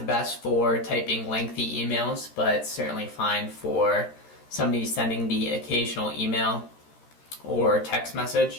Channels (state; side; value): late; right; 13 ms